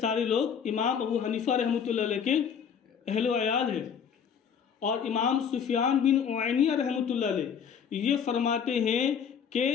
لوگ امام ابو حنیفہ رحمۃ اللہ علیہ کے اہل و عیال ہیں۔ اور امام سفیان بن عینیہ رحمۃ اللہ علیہ یہ فرماتے ہیں کہ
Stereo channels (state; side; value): quieter; right; 7.4 dB